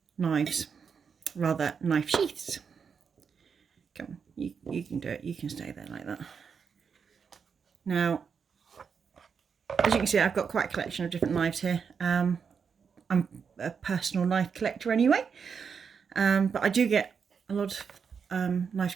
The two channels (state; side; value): quieter; left; 6.3 dB